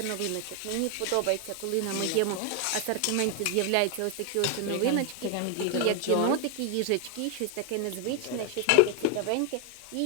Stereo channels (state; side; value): different; both; correlation 0.01